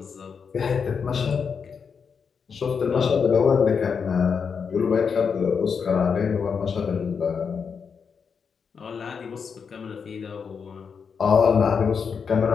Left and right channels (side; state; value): right; quieter; 6.1 dB